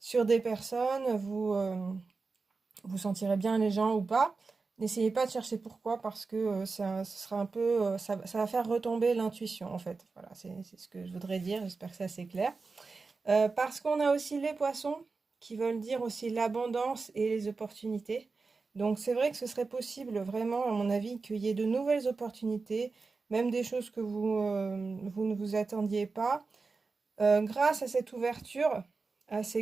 des personnes, vous sentirez bien les gens ou pas. N'essayez pas de chercher pourquoi, parce que ce sera un peu, ça va faire retomber l'intuition, en fait. Voilà, c'est ce que je voudrais dire. J'espère que c'est assez clair. Parce qu'on a aussi les poissons, qui veulent dire aussi l'abondance et les opportunités. Donc c'est vrai que ce serait possible, vraiment, à mon avis, qu'il y ait de nouvelles opportunités, même des choses que vous ne vous attendiez pas. Grâce à cette ouverture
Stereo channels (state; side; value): quieter; left; 4.2 dB